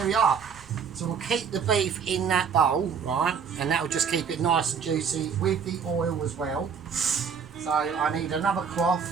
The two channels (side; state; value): left; quieter; 6.5 dB